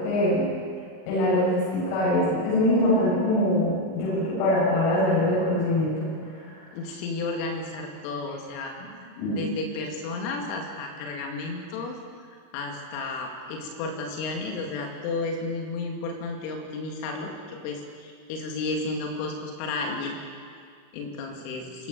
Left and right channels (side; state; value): right; late; 38 ms